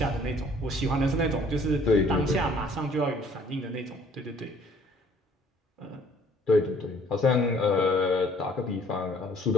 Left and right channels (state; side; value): normal; both; correlation 0.58